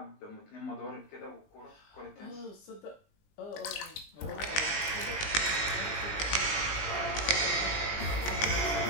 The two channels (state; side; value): late; right; 20 ms